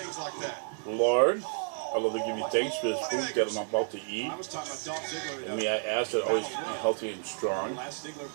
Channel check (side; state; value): left; silent; 57 dB below the other